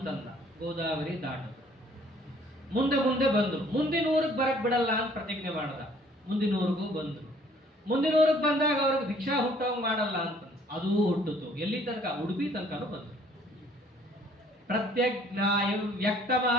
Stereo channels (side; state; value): both; normal; correlation 0.58